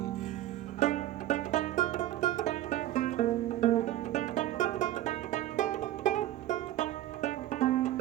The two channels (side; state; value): left; quieter; 14.1 dB